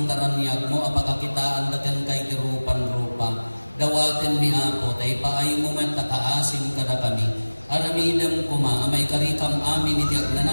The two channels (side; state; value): both; inverted; correlation -1.00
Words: taranyag mo apakakitaan daken kay tirupan-rupa. Dawaten ni Apo tay paay mo man takaasim kada kami. Aramidem kuma amay karikam amin iti